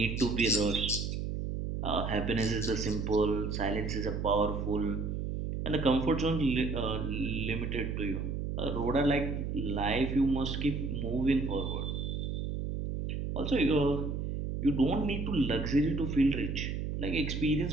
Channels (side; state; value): right; noise; hum, 3 dB below the sound